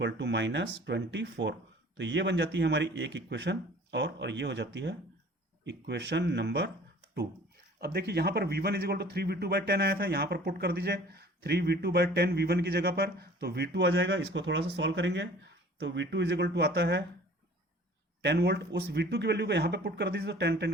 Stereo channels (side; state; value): both; normal; correlation 0.48